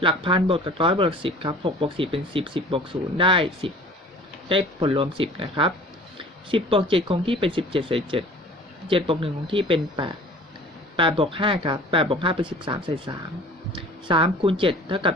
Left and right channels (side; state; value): both; normal; correlation 0.46